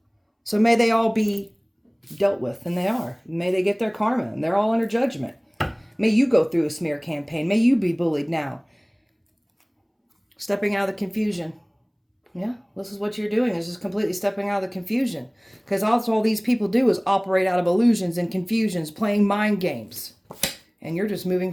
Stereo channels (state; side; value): identical; both; correlation 1.00